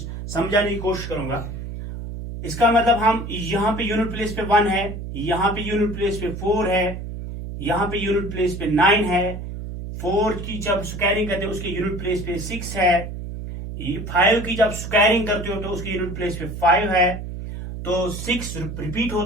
की कोशिश करूंगा। इसका मतलब हम यहां पे यूनिट प्लेस पे 1 है, यहां पे यूनिट प्लेस पे 4 है, यहां पे यूनिट प्लेस पे 9 है, 4 की जब स्क्वायरिंग करते हो उसके यूनिट प्लेस पे 6 है, 5 की जब स्क्वायरिंग करते हो तो उसके यूनिट प्लेस पे 5 है, तो 6 रिपीट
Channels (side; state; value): right; noise; hum, 8 dB below the sound